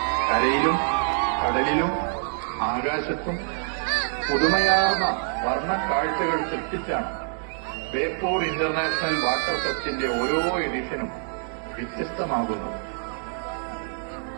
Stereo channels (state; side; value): silent; left; 61 dB below the other